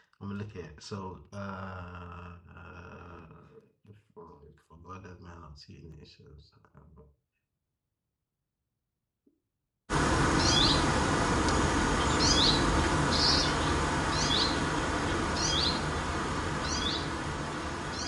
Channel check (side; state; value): both; identical; correlation 1.00